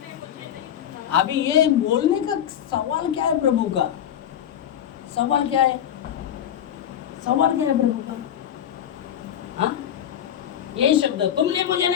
अभी ये बोलने का सवाल क्या है प्रभु का? सवाल क्या है? सवाल क्या है प्रभु का? हाँ, ये शब्द तुमने मुझे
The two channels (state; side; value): quieter; right; 10.0 dB